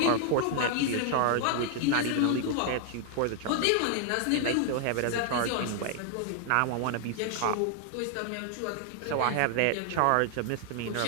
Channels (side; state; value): both; different; correlation 0.00